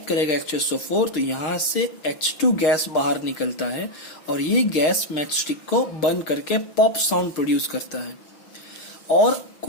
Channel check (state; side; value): late; right; 6.4 ms